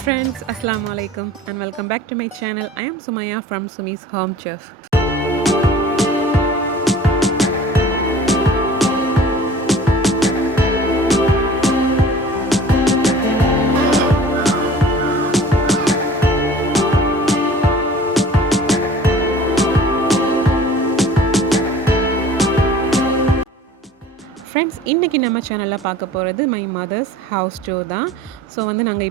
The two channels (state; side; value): normal; both; correlation 0.46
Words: friends, Assalamu alaikum and welcome back to my channel. I am Sumaya from Sumi's Home Chef. Friends, இன்றைக்கி நம்ம சேனலில் பார்க்க போகிறது my mother's house tour தான். So நாங்கள்